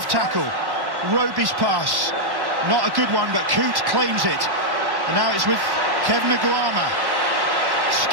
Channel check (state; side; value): late; left; 1.1 ms